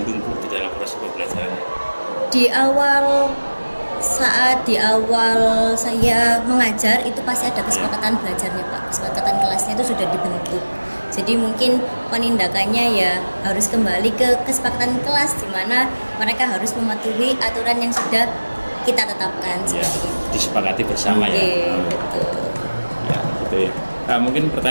Bu, di dalam proses pembelajaran? Saat di awal saya mengajar itu pasti ada kesepakatan belajarnya Pak, kesepakatan kelasnya itu sudah dibentuk. Jadi mungkin penindakannya ya harus kembali ke kesepakatan kelas di mana mereka harus mematuhi aturan yang sudah kita tetapkan Ya, seperti itu. disepakati bersama ya. Oke, betul. Ya, gitu ya. Nah, mungkin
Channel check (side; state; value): both; inverted; correlation -1.00